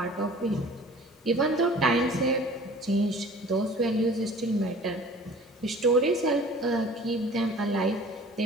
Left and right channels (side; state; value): both; normal; correlation 0.46